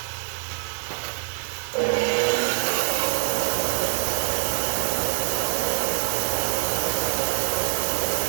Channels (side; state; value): left; silent; digital silence